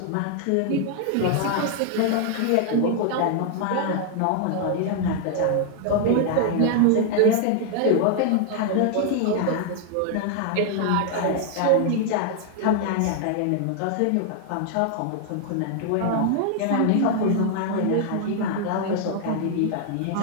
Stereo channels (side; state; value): both; different; correlation -0.01